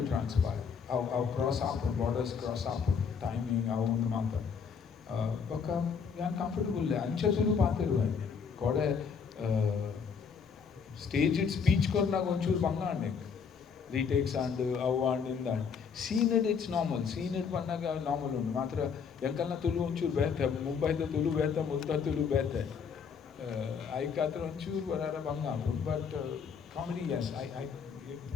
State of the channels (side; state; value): right; quieter; 6.2 dB